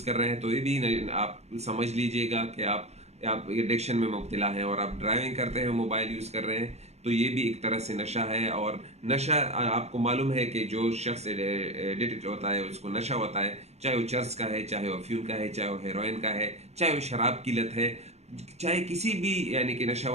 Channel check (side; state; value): left; late; 0.31 ms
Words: कर रहे हैं तो ये भी आप समझ लीजिएगा कि आप एडिक्शन में मुब्तला हैं। और आप ड्राइविंग करते हैं मोबाइल यूज़ कर रहे हैं तो ये भी एक तरह से नशा है। और नशा आपको मालूम है कि जो शख्स एडिक्ट होता है उसको नशा होता है, चाहे वो चर्च का है, चाहे वो अफीम का है, चाहे वो हेरोइन का है, चाहे वो शराब की लत है, चाहे किसी भी यानी कि